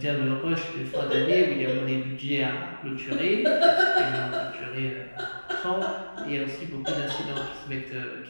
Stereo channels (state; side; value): inverted; both; correlation -1.00